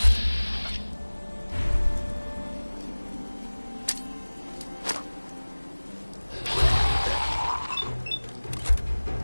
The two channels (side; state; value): both; inverted; correlation -1.00